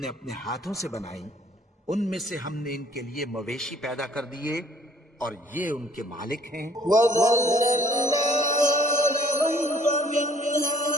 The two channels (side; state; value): both; normal; correlation 0.58